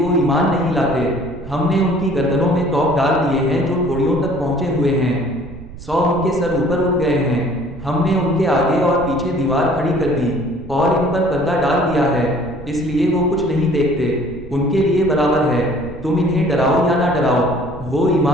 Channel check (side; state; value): right; noise; rumble, 15 dB below the sound